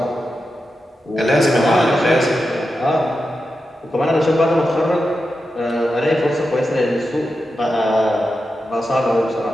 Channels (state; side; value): normal; both; correlation 0.90